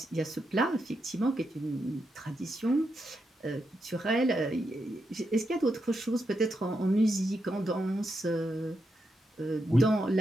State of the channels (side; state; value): both; normal; correlation 0.84